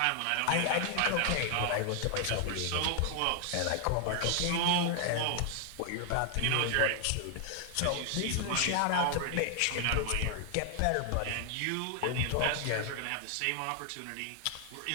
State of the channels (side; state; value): both; different; correlation 0.00